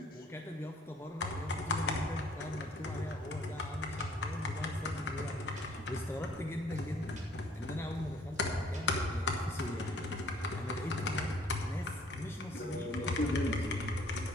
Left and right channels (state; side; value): normal; both; correlation 0.59